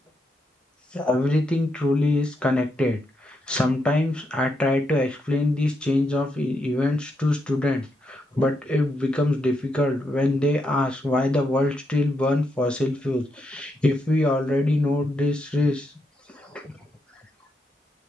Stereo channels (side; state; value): both; normal; correlation 0.81